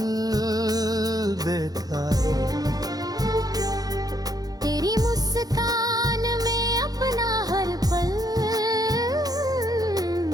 देखा, तेरी मुस्कान में अपना हर पल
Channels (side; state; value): left; late; 0.18 ms